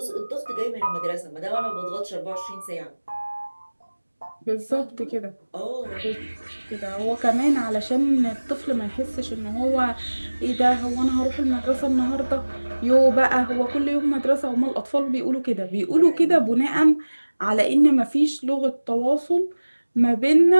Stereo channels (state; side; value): inverted; both; correlation -1.00